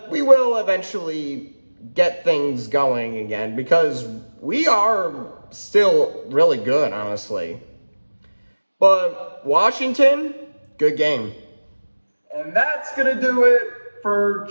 we will eventually get things going again because we are still really good, honestly. But Washington, good game. And that's going to do it for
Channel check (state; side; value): inverted; both; correlation -1.00